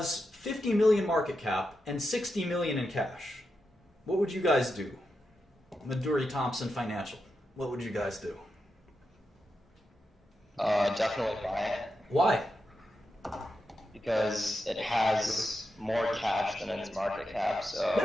50 million market cap and 60 million in cash. What would you guys do? Maduri Thompson Financial. What would you guys do? Definitely buy it. Why? Because it has more cash than its market cap.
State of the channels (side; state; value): both; normal; correlation 0.88